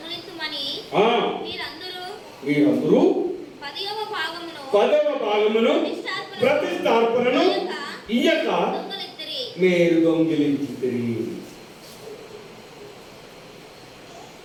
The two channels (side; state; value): both; identical; correlation 1.00